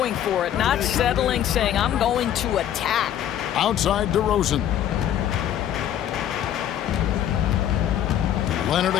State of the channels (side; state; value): right; quieter; 10.8 dB